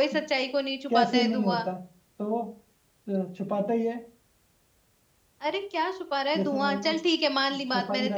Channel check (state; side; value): identical; both; correlation 1.00